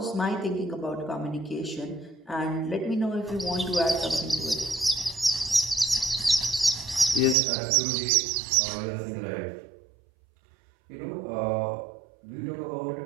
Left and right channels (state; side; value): drops out; left; at 7.4 s